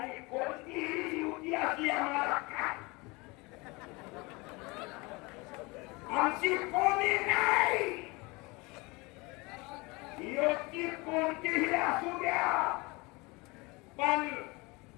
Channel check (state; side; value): quieter; right; 25.3 dB